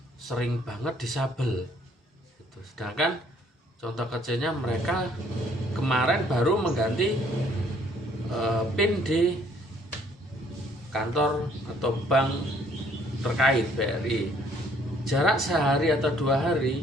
sering banget disabel gitu. Sedangkan contoh kecilnya, mereka kemarin baru mengganti PIN di kantor atau bank terkait BRI. Jarak sehari atau 2 hari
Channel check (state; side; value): normal; both; correlation 0.62